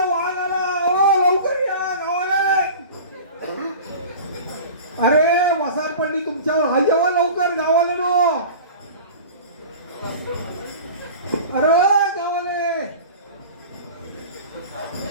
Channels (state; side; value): inverted; both; correlation -0.37